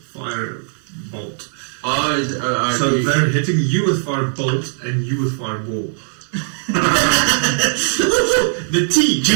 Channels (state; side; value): silent; left; 57 dB below the other